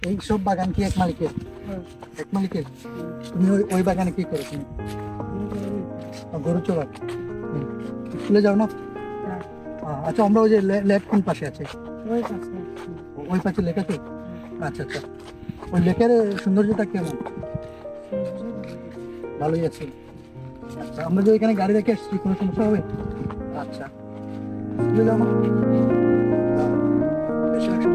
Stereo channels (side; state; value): both; identical; correlation 1.00